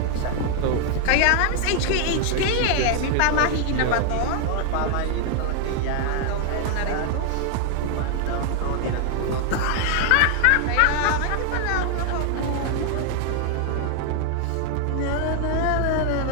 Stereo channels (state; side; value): different; both; correlation 0.00